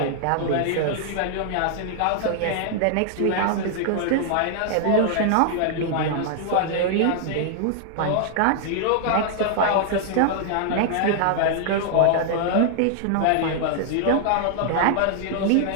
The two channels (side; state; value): both; different; correlation 0.00